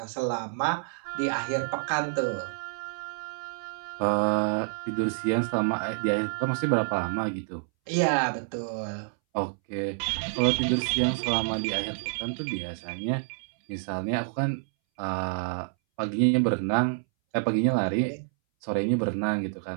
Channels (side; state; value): left; silent; 59 dB below the other